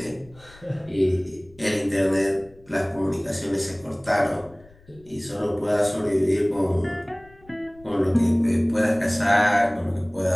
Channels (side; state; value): left; noise; rumble, 26 dB below the sound